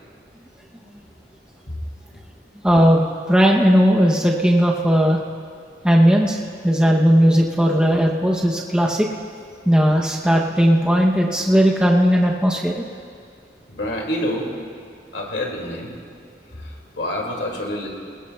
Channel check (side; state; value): both; normal; correlation 0.89